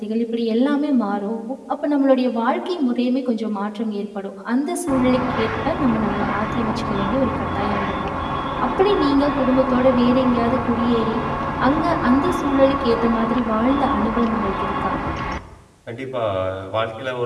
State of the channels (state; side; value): identical; both; correlation 1.00